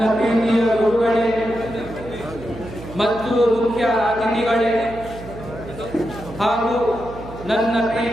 ಪ್ರೀತಿಯ ಗುರುಗಳೇ ಮತ್ತು ಮುಖ್ಯ ಅತಿಥಿಗಳೇ ಹಾಗೂ ನನ್ನ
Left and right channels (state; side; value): noise; right; hum, 14 dB below the sound